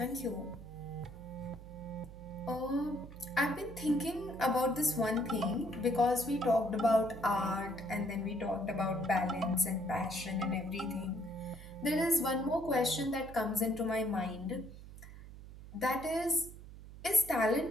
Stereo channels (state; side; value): noise; right; hum, 15 dB below the sound